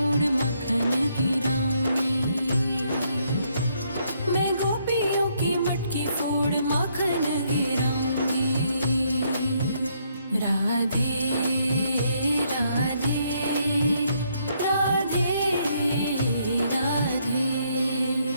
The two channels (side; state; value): both; inverted; correlation -0.72